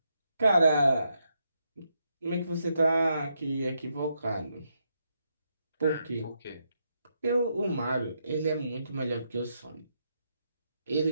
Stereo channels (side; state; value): both; inverted; correlation -0.81